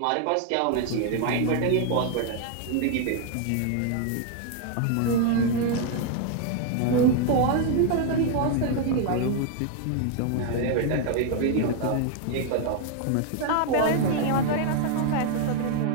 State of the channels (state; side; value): different; both; correlation 0.00